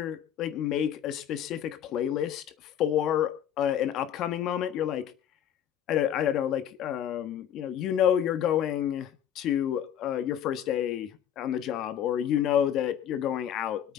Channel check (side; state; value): right; quieter; 9.9 dB